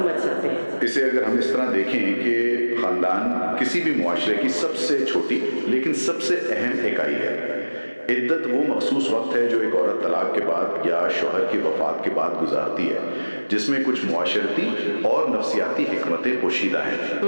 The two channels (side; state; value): both; inverted; correlation -1.00